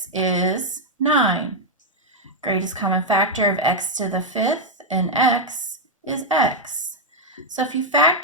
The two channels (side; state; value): both; normal; correlation 0.00